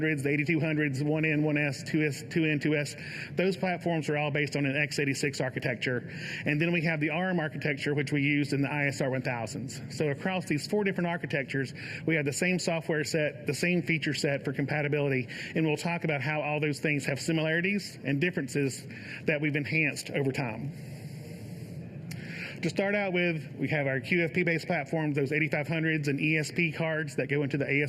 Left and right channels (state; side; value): identical; both; correlation 1.00